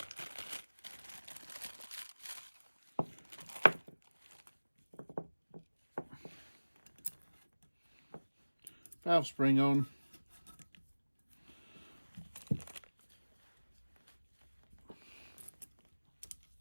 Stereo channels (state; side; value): inverted; both; correlation -1.00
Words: Valve spring on.